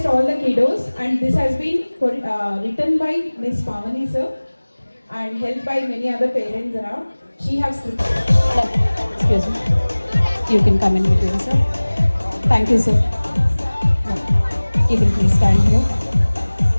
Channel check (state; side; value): inverted; both; correlation -1.00